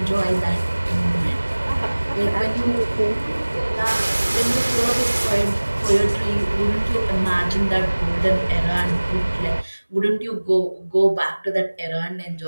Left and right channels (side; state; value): both; inverted; correlation -1.00